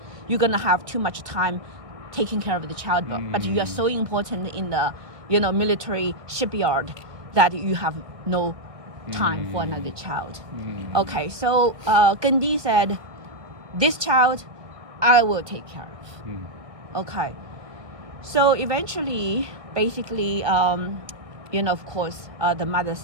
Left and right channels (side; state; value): left; late; 1.6 ms